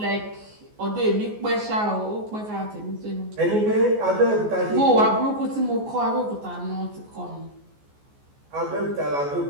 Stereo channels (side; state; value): left; late; 14 ms